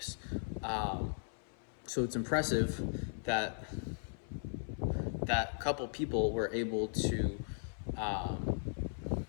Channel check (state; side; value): silent; right; 53 dB below the other